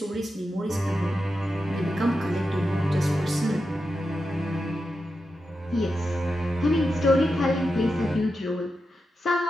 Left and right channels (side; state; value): both; normal; correlation 0.89